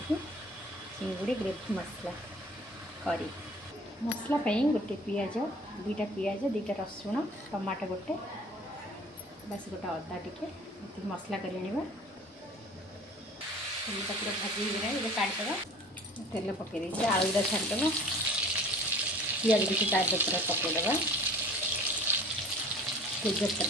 चिंगुड़ी ग्रेवी मसला करी मसला गोटे पियाज दुईटा पियाज दुईटा रसुण टमाटो गोटे बस गोटे अदा टिके मसला कर पूरा भाजी ये काटद तेल पकई आलूटा छाड़देव पियाज भी चार पूरा पकईदे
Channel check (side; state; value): both; normal; correlation 0.46